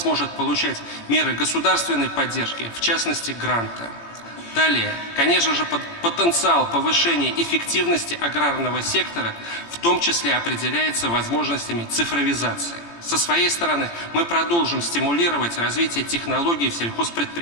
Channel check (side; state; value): right; late; 18 ms